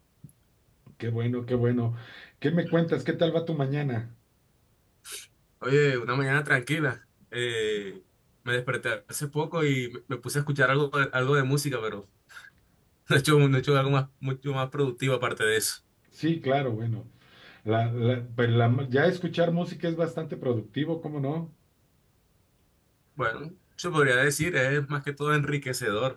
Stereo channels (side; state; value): both; identical; correlation 1.00